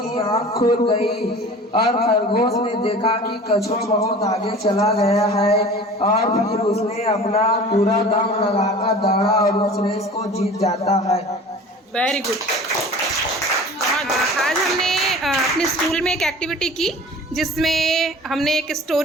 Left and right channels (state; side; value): normal; both; correlation 0.41